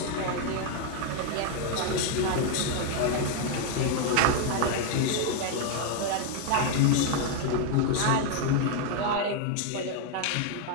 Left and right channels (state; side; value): different; both; correlation 0.01